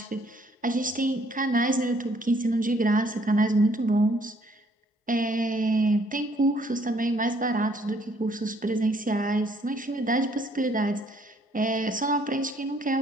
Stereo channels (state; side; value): normal; both; correlation 0.64